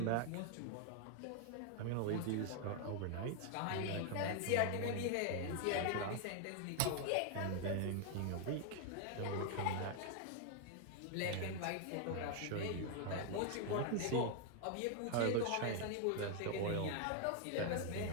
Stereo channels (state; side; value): different; both; correlation 0.00